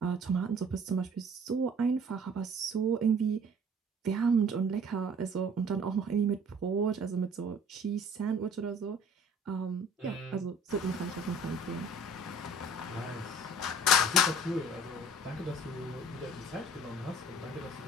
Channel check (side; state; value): both; normal; correlation 0.51